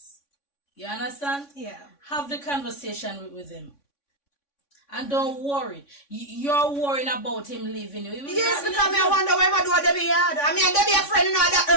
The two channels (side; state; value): right; late; 3.6 ms